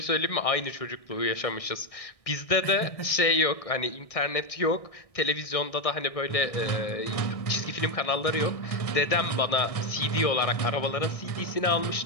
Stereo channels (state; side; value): late; right; 1.6 ms